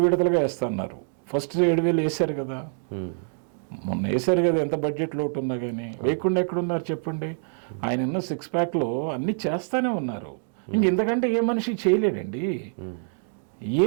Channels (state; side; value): silent; left; 61 dB below the other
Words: విడతలుగా వేస్తా అన్నారు. ఫస్ట్ 7,000 వేశారు కదా, మొన్న వేశారు కదా. ఎంత బడ్జెట్ లోటు ఉన్నా కానీ వేయకుండా ఎక్కడున్నారు చెప్పండి. ఆయన ఉన్న 6 ప్యాక్లో అన్నీ చేస్తానే ఉన్నారు. ఇంతకంటే ఏ మనిషి చేయలేడండి,